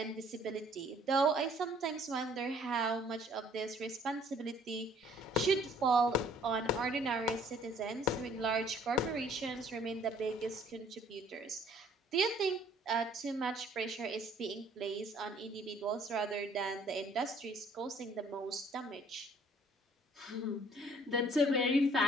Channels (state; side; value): normal; both; correlation 0.58